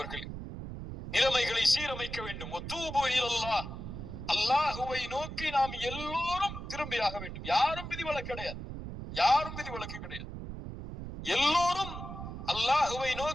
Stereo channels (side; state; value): right; noise; rumble, 8 dB below the sound